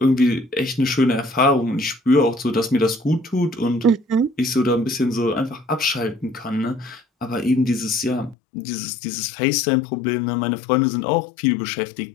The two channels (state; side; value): drops out; right; at 8.3 s